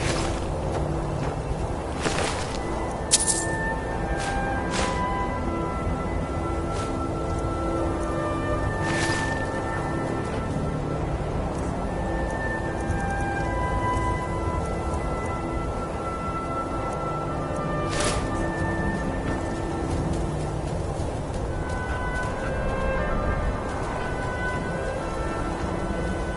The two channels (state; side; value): identical; both; correlation 1.00